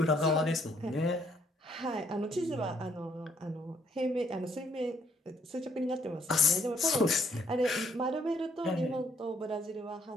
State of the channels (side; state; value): both; normal; correlation 0.68